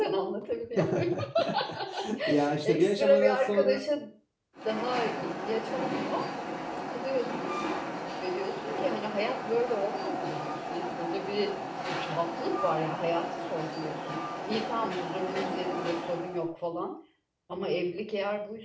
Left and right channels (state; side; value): identical; both; correlation 1.00